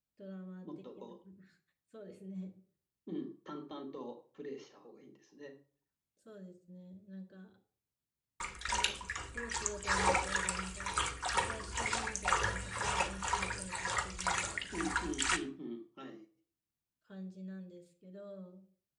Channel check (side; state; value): both; identical; correlation 1.00